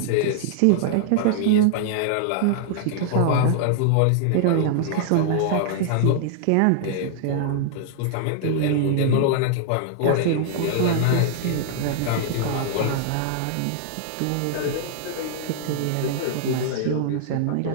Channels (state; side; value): different; both; correlation -0.01